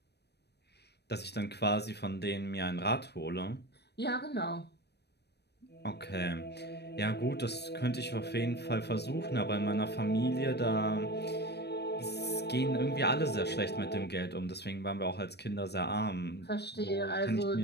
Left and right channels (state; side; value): late; right; 0.48 ms